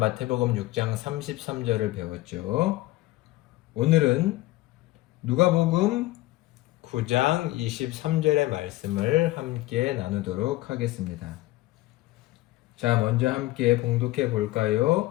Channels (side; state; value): right; quieter; 18.0 dB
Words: 6장 33절을 배웠죠. 오늘은 누가복음 9장 23절의 말씀을 함께 나누도록 하겠습니다. 자, 먼저 함께 봉독해